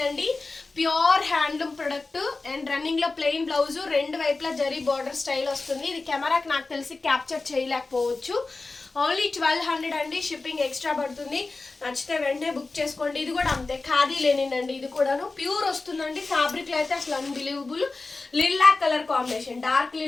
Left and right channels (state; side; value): quieter; right; 3.6 dB